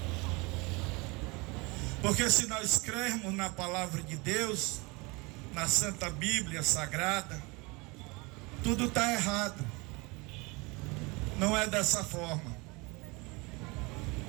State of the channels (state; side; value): quieter; left; 26.5 dB